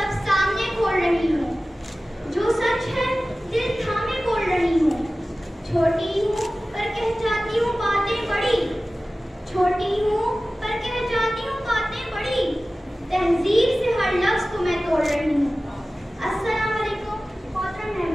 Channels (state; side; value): normal; both; correlation 0.96